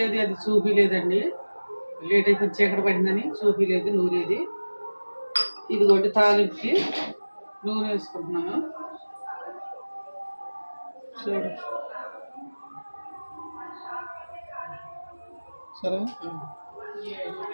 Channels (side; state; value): both; inverted; correlation -1.00